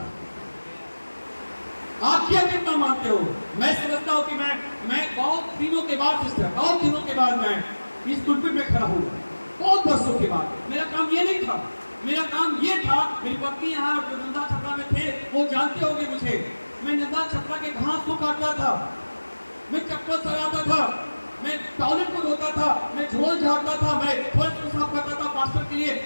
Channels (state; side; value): inverted; both; correlation -1.00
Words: आप क्या कितना मानते हो? मैं समझता हूं कि मैं बहुत दिनों के बाद सिस्टर, बहुत दिनों के बाद मैं इस पुलपिट में खड़ा हुआ, बहुत वर्षों के बाद। मेरा काम ये नहीं था, मेरा काम ये था, मेरी पत्नी यहाँ जो नंदा छपरा में थे वो जानते होंगे मुझे, मैं नंदा छपरा के घास को काटता था, मैं चप्पल सराता था, मैं टॉयलेट को धोता था, मैं झोल झाड़ता था, मैं फर्श को साफ करता था, पास्टर के लिए